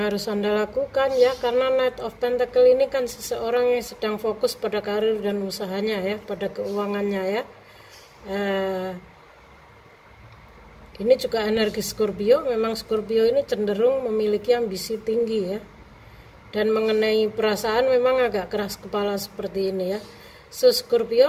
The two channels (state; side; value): identical; both; correlation 1.00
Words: harus Anda lakukan ya, karena Knight of Pentacle ini kan seseorang yang sedang fokus pada karir dan usahanya ya, pada keuangannya ya. Ini juga energi Scorpio. Memang Scorpio ini cenderung memiliki ambisi tinggi ya, dan mengenai perasaan memang agak keras kepala seperti ini ya. So